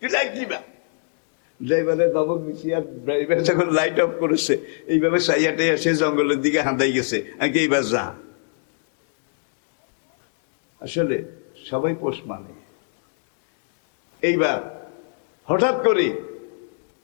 তুই লাইট নিবা। ড্রাইভারের দমক দিছি, আর ড্রাইভার যখন লাইট অফ করেছে, এইভাবে সাইয়াটে এসে জঙ্গলের দিকে হাঁদাই গেছে। আমি এইবার যা। আসলে সবাই পোষ মানে। এইবার হঠাৎ করে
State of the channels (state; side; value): silent; right; digital silence